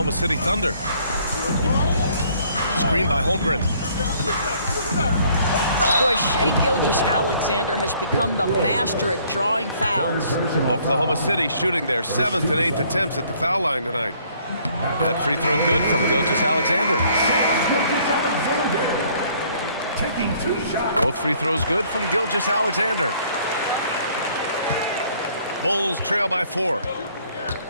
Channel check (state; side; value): inverted; both; correlation -0.61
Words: City Thunder. Screen by Holmgren. Boy, Shai Gilgeous-Alexander has become the master at drawing fouls. Oklahoma City shooting their 7th and 8th attempts at the foul line tonight. That free throw good from Gilgeous-Alexander. Taking 2 shots. Both free throws good from Gilgeous-Alexander. Bulls trail by 4.